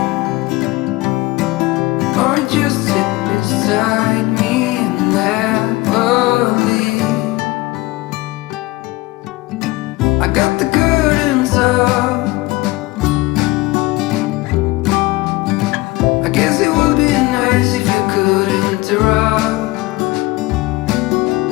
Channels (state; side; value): quieter; right; 20.5 dB